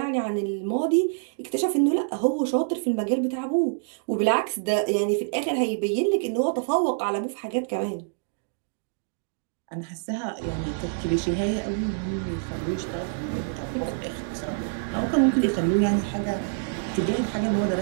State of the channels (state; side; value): silent; left; digital silence